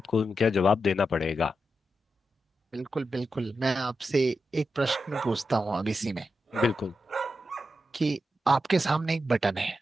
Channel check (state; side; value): normal; both; correlation 0.88